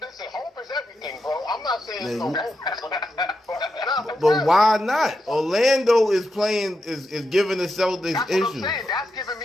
hope is everything, bro. I'm not saying it's no hope. But why not? Orlando is playing, is giving the Celtics That's issues. what I'm saying. That's giving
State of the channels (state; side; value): normal; both; correlation 0.86